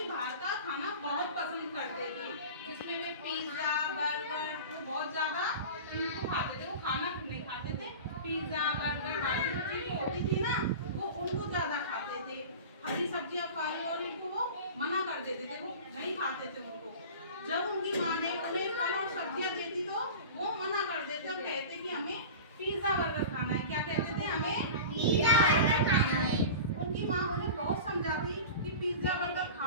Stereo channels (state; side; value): inverted; both; correlation -0.34